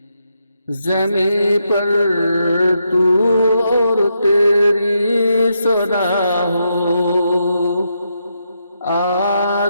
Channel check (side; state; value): both; inverted; correlation -0.81